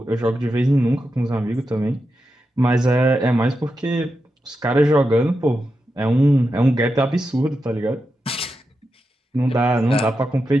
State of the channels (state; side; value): normal; both; correlation 0.88